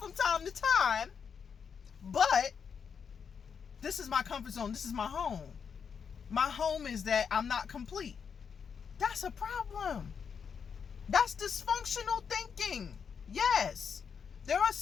time to time. But this is my comfort zone. This is my home. My home is that I'm not complete. That's a problem. That's dysfunctional thinking. Yes, there are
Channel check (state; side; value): quieter; right; 6.6 dB